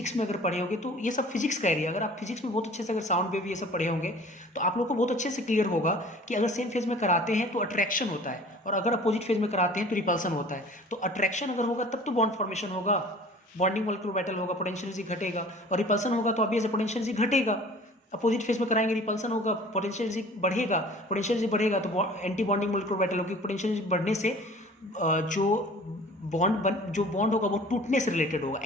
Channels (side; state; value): both; normal; correlation 0.46